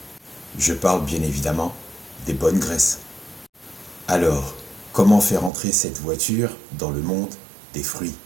Je parle bien évidemment des bonnes graisses. Alors, comment faire entrer cette voiture dans le monde des fruits?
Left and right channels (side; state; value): left; drops out; at 5.5 s